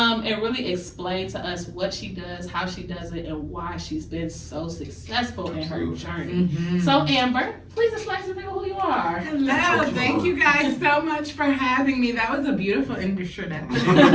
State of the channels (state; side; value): identical; both; correlation 1.00